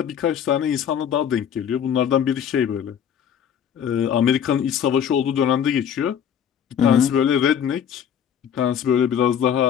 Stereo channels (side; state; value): right; quieter; 8.6 dB